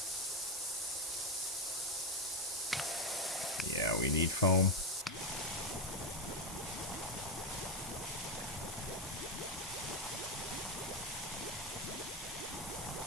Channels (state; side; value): normal; both; correlation 0.09